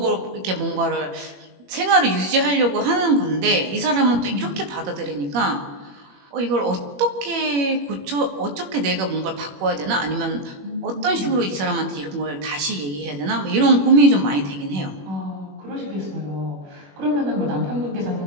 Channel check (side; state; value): left; late; 21 ms